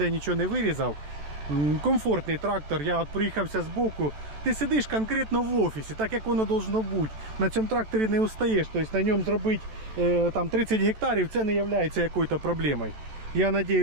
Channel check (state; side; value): late; left; 14 ms